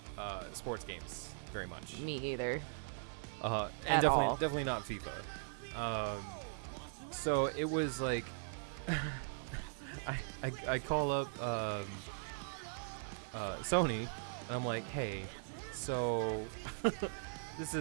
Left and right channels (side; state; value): left; silent; 51 dB below the other